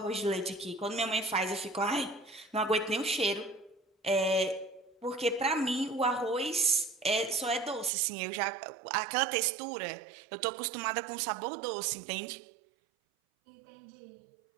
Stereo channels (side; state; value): left; drops out; at 7.9 s